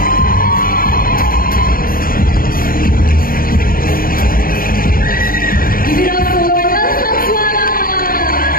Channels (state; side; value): late; right; 0.42 ms